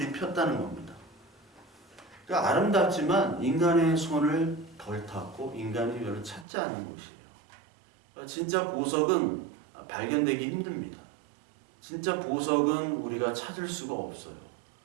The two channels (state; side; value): drops out; left; at 6.5 s